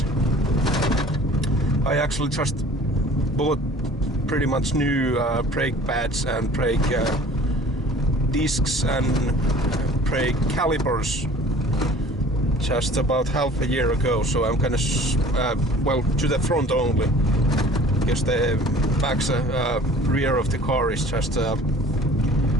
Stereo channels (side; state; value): both; normal; correlation 0.48